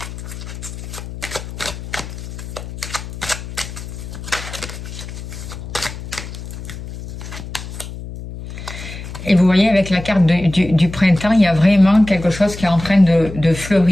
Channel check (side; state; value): left; noise; hum, 10 dB below the sound